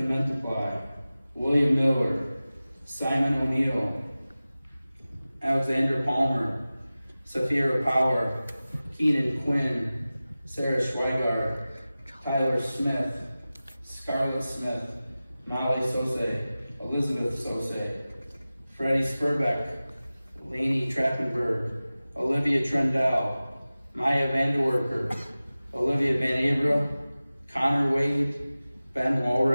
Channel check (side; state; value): both; inverted; correlation -0.96